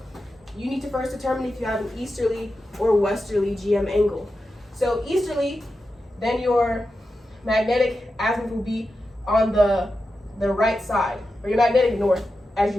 you need to first determine if you have an easterly or westerly GM angle. So, easterly, then your magnetic azimuth will be on the right side, or your magnetic north, as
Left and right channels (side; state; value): both; normal; correlation 0.90